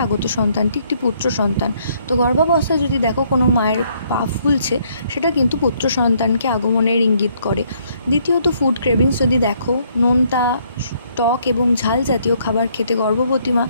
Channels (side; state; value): both; inverted; correlation -0.68